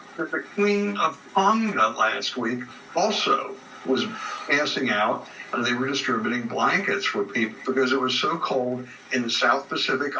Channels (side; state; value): both; identical; correlation 1.00